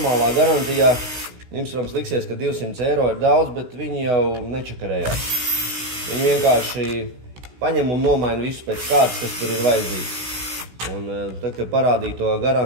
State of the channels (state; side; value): late; left; 16 ms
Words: garantijā, jums, protams, liksies, ka 200 eiro ir daudz, bet viņi jau nečakarējās. Viņi vienkārši paņem un nomaina visu pēc kārtas, kas tur ir vajadzīgs. Un tad, kad parādīja to